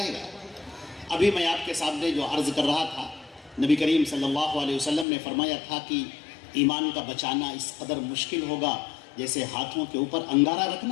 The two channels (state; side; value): drops out; right; at 5.1 s